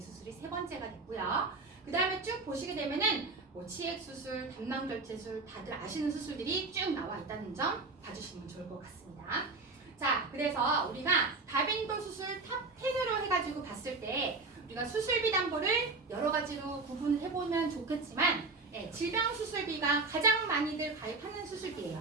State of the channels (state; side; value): quieter; left; 3.7 dB